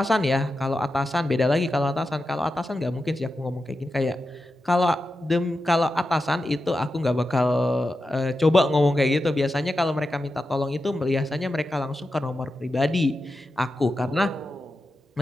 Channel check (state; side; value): normal; both; correlation 0.90